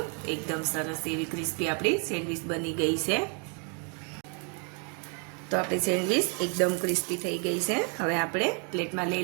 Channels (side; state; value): left; quieter; 38.2 dB